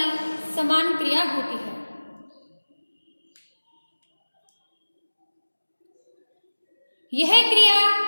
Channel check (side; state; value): both; inverted; correlation -1.00